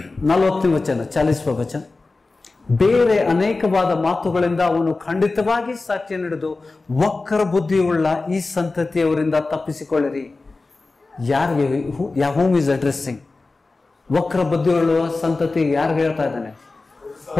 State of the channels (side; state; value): right; quieter; 3.5 dB